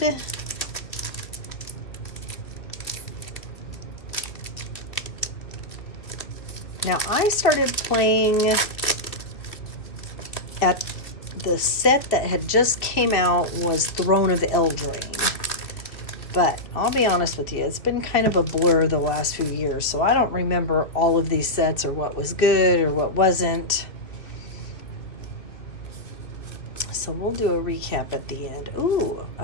Now I started playing at the set that had just came out was Throne of Eldraine. But I'll be honest with you, it's been kind of a blur the last few years, so I don't remember all of these sets or what was good or what wasn't. So we'll do a recap at the end. Ooh,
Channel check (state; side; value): late; right; 2.1 ms